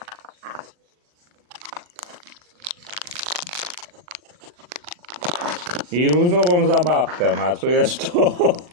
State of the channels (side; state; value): left; late; 40 ms